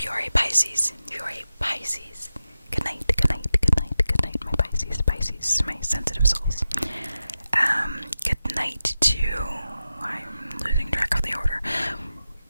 you are a Pisces, good night, good night, good night, good night, my Pisces, my sensitive souls. Good night to, I'm losing track of the order,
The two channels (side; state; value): both; inverted; correlation -0.92